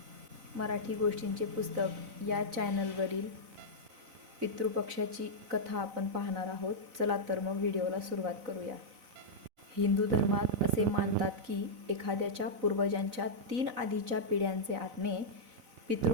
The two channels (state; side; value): late; left; 4.0 ms